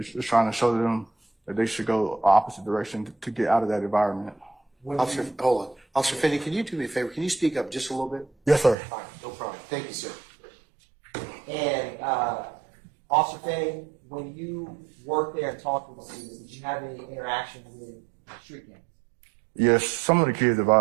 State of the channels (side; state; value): left; drops out; at 8.8 s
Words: just trying to show them that they should go opposite direction to get out of that environment. Officer, hold on. Officer Finney, can you do me a favor? Can you speak up just a little bit? Yes, sir. All right, no problem. Thank you, sir. And Officer Finny, when you worked there and talked with the students, did you have any interaction with street gangs? Yes, some of the kids